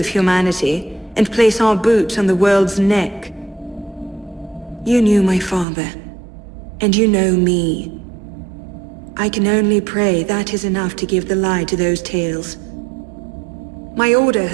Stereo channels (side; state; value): left; drops out; at 5.7 s